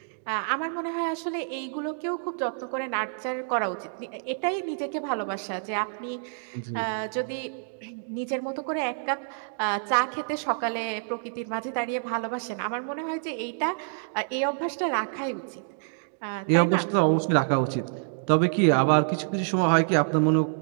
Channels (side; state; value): left; silent; digital silence